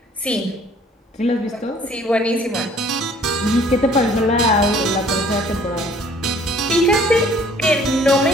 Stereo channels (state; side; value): normal; both; correlation 0.56